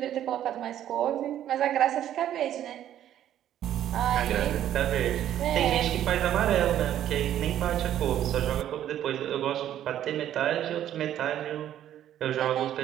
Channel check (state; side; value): quieter; left; 11.3 dB